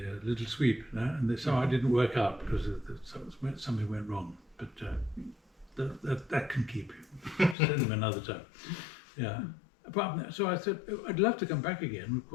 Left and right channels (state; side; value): drops out; right; at 7.6 s